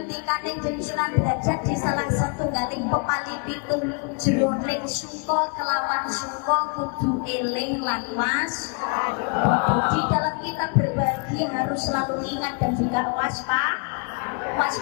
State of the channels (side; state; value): right; quieter; 36.4 dB